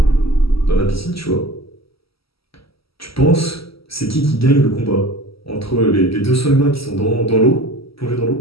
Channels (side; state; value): right; late; 0.75 ms